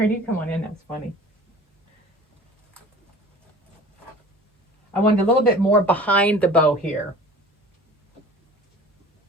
you come on in, that's funny. I wanted a little bit more behind the bow here.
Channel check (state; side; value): normal; both; correlation 0.43